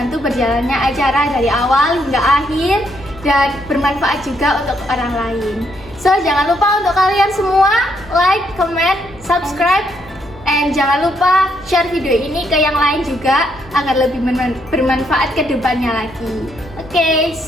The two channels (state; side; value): normal; both; correlation 0.74